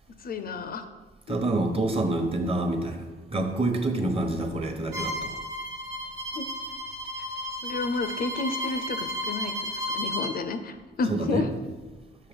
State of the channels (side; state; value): both; normal; correlation 0.47